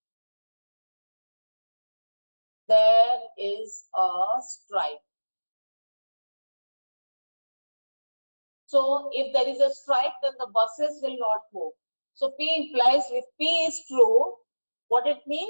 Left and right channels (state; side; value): inverted; both; correlation -1.00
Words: there is a strike. So if there is a strike, then the buses will not move. So P implies if P is true, what it